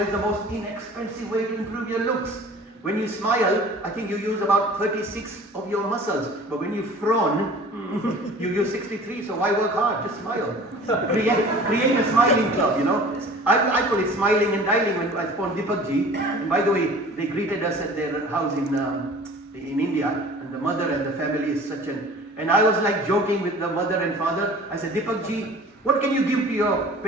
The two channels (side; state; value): both; normal; correlation 0.45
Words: is the most inexpensive way to improve your looks. When you smile, I think you use about 36 of your muscles. But when you frown, you use 63. So why work hard? Just smile. Create a smiling club, I call it smiling and dialing when I spawned Deepak ji. And by the way, they greeted us at their house in India. And the mother and the family is such an... And I was like joking with the mother and father. I said, Deepak ji, what can you give to your